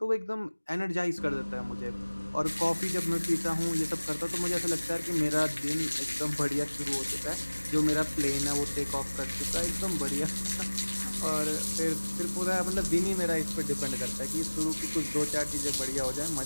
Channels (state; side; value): inverted; both; correlation -1.00